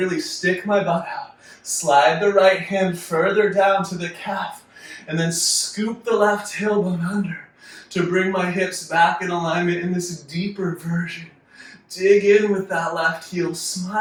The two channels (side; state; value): both; identical; correlation 1.00